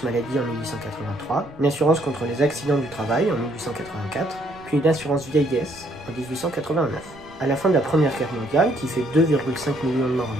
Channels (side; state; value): right; noise; rumble, 23 dB below the sound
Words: maladie en 1883, une assurance contre les accidents du travail en 1884, puis une assurance vieillesse en 1889. À la fin de la Première Guerre mondiale, qui fait 2,5 millions de morts